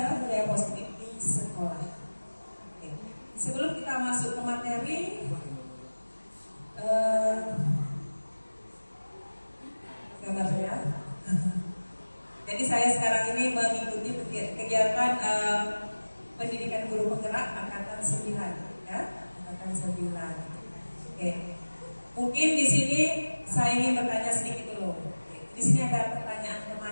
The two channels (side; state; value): both; inverted; correlation -1.00